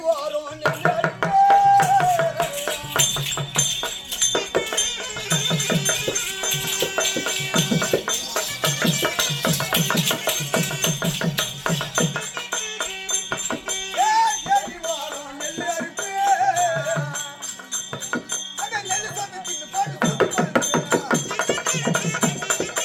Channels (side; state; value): both; identical; correlation 1.00